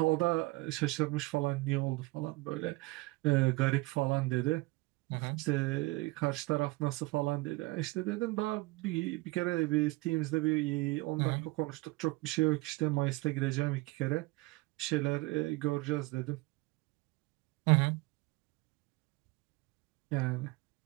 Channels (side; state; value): left; quieter; 22.5 dB